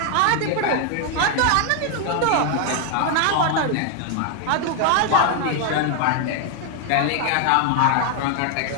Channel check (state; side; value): different; both; correlation 0.00